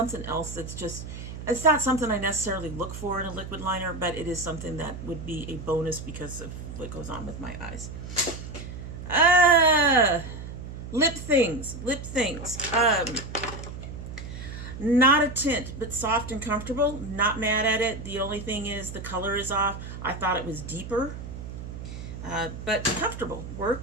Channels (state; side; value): noise; right; hum, 10 dB below the sound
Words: else that's just, it's not something I necessarily look for in a liquid liner, but it is something that would be a bonus because of what goes on with my eyes. Lip things. Not a tint, but soft and comfortable. Not mad at it. The only thing is the color is off. I thought it was deeper, but comfortable.